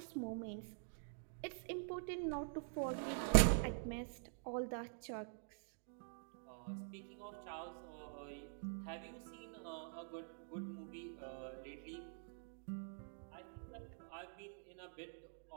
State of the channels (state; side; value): silent; left; digital silence